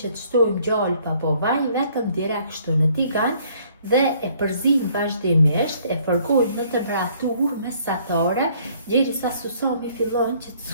që të shtojmë gjallë apo vaj, vetëm direkt kështu në tigan dhe e përzim vazhdimisht, e përgojmë në temperaturë mesatare derisa susami fillon që të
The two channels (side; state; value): both; inverted; correlation -0.62